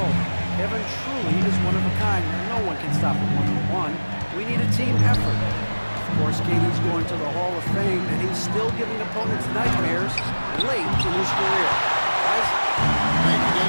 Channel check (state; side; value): inverted; both; correlation -1.00